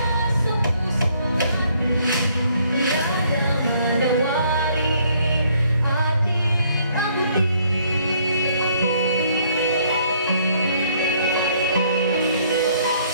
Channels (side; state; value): both; inverted; correlation -0.65